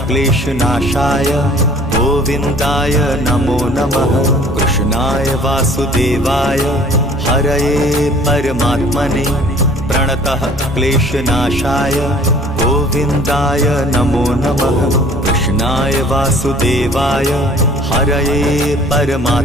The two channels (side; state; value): both; normal; correlation 0.52